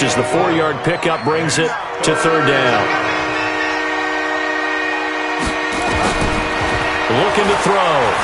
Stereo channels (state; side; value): identical; both; correlation 1.00